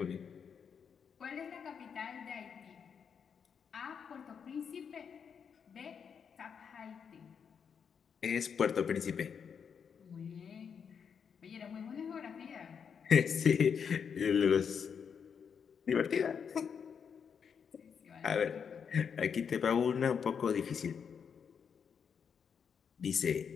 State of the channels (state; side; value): quieter; right; 6.9 dB